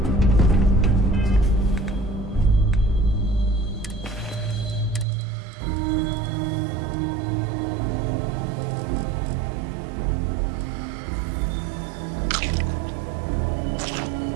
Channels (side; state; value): left; drops out; at 5.1 s